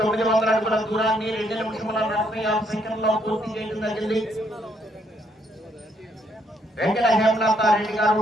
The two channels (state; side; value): normal; both; correlation 0.72